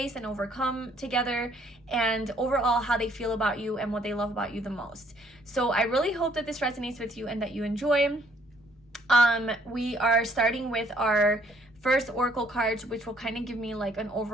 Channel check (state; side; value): normal; both; correlation 0.65